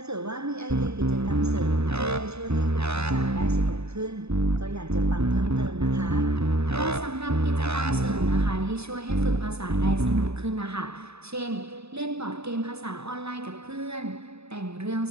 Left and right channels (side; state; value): left; late; 0.79 ms